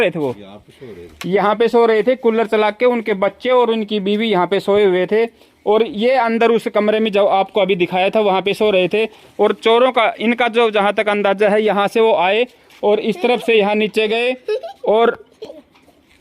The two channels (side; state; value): both; identical; correlation 1.00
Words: थे, वो यहाँ पे सो रहे थे कूलर चला के, उनके बच्चे और उनकी बीवी यहाँ पे सोए हुए थे और ये अंदर उस कमरे में जो आपको अभी दिखाया था वहाँ पे सो रहे थे। और चोरों का इनका जो जहाँ तक अंदाजा है, यहाँ से वो आए और इस तरफ से यहाँ नीचे गए और